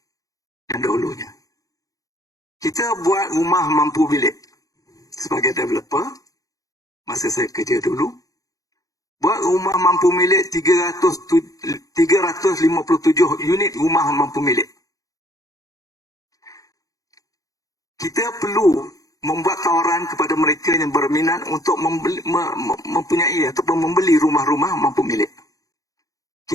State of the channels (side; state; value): right; late; 0.17 ms